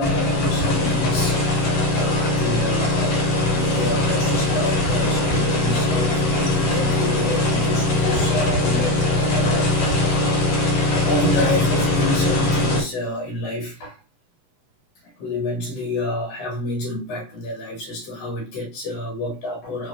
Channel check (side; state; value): right; late; 8.0 ms